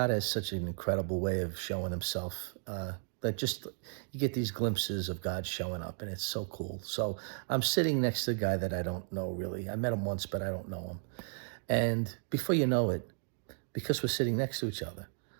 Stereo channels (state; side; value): silent; left; digital silence